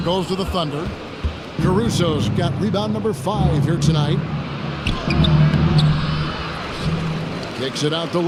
goes to the Thunder. Caruso's got rebound number 5 here tonight. Kicks it out to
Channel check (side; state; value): both; identical; correlation 1.00